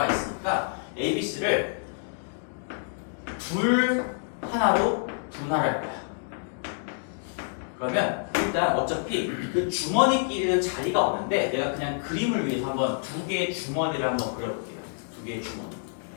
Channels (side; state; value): right; silent; digital silence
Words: 있으니까 A, B, C를 둘 하나로 분할할 거야. 그러면 일단 어차피 그 주머니끼리는 자리가 없는데 내가 그냥 그림을 위해서 한번 두 개의 주머니를 한번 그려볼게요. 두 개의 주머니.